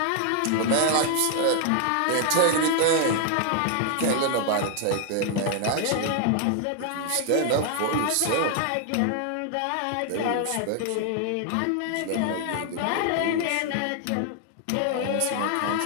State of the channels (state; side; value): different; both; correlation 0.00